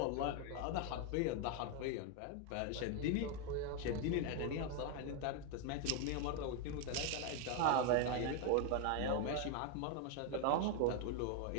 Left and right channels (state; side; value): different; both; correlation 0.01